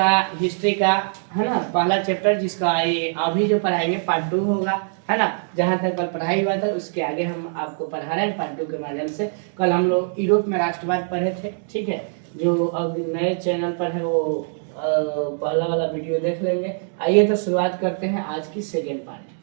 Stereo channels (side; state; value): left; silent; digital silence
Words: हिस्ट्री का, है ना, पहला चैप्टर, जिसका ये अभी जो पढ़ाएंगे पार्ट 2 होगा, है ना। जहाँ तक कल पढ़ाई हुआ था उसके आगे हम आपको पढ़ा रहे हैं पार्ट 2 के माध्यम से। कल हम लोग यूरोप में राष्ट्रवाद पढ़े थे, ठीक है। जो अब नए चैनल पर है वो पहला वाला वीडियो देख लेंगे। आइए तो शुरुआत करते हैं आज की सेकेंड